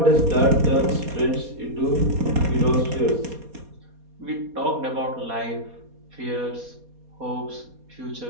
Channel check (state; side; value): late; left; 4.2 ms